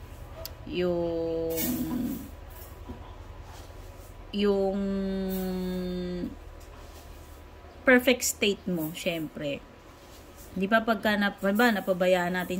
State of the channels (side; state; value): both; identical; correlation 1.00